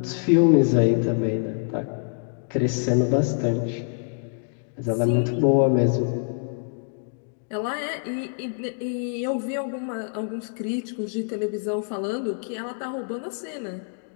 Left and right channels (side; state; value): right; silent; 61 dB below the other